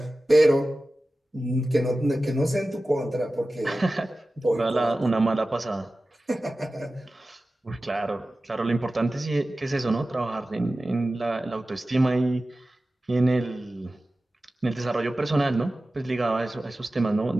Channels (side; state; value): both; normal; correlation 0.95